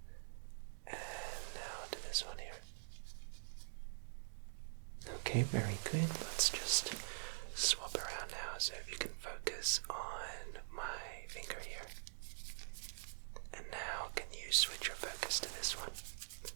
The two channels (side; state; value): left; silent; digital silence